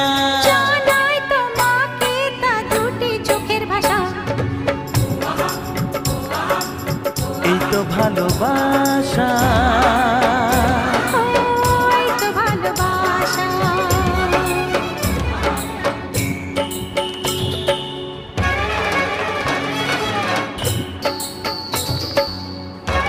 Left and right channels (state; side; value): identical; both; correlation 1.00